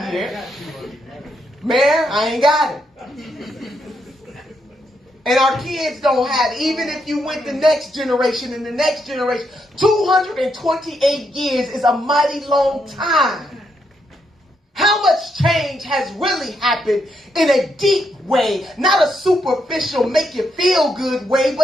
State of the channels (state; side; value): normal; both; correlation 0.79